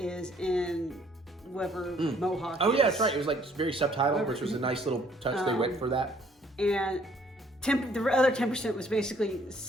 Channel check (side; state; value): both; normal; correlation 0.62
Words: in whoever Mohawk Oh is. yeah, that's right. It was like very subtitled, which was a nice little touch they went for that. And the other 10% was basically